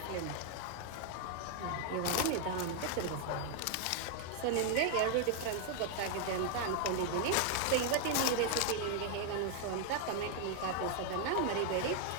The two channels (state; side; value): different; both; correlation 0.00